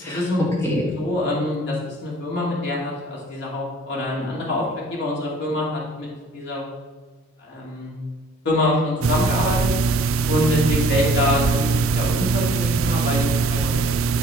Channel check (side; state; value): both; normal; correlation 0.54